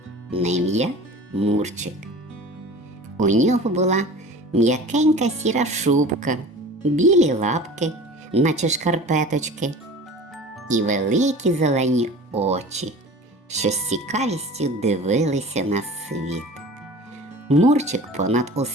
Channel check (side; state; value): both; normal; correlation 0.39